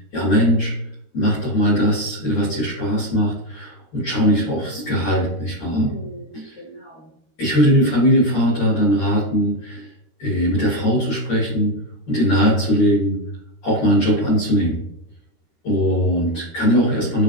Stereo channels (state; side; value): late; right; 13 ms